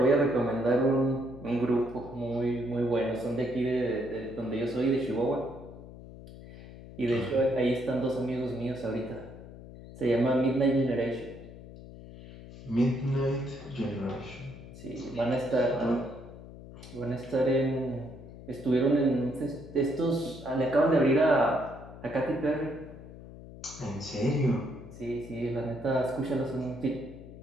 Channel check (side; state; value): left; noise; hum, 15 dB below the sound